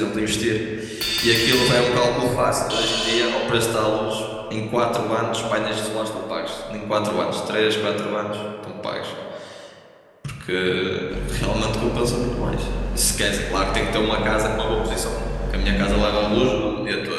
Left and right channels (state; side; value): identical; both; correlation 1.00